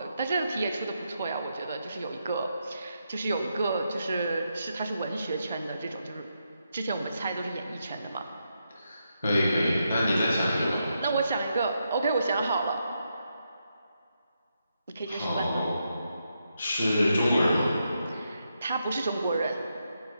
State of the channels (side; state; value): both; inverted; correlation -0.83